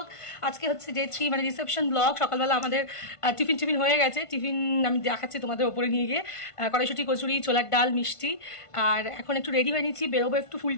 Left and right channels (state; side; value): late; right; 1.5 ms